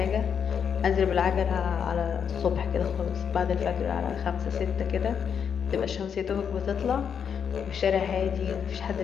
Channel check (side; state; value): right; quieter; 7.4 dB